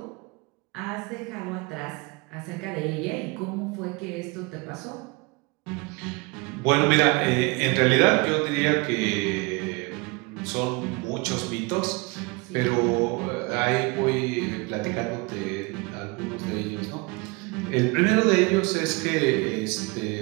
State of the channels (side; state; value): left; quieter; 26.9 dB